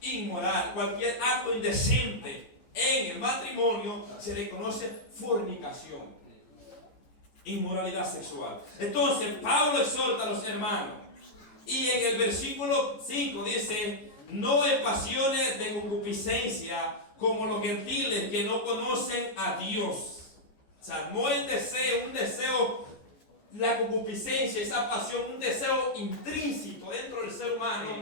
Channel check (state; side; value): late; right; 14 ms